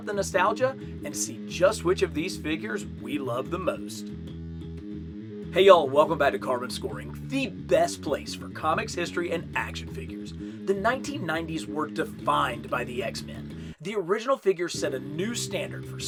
the nostalgia and see just which of these figures we love the most. Hey y'all, welcome back to Carbon Scoring, the best place for comics, history, and action figures. The 1990s were defined by the X-Men. The original figures set a new standard for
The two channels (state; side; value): identical; both; correlation 1.00